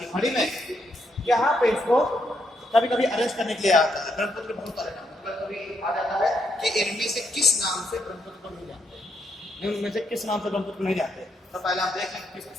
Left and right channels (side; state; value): both; normal; correlation 0.78